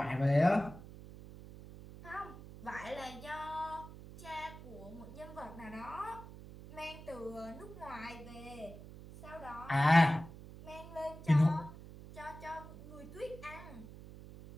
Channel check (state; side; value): noise; right; hum, 15 dB below the sound